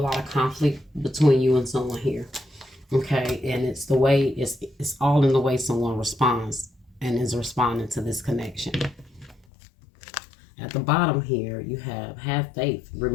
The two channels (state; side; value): drops out; right; at 9.5 s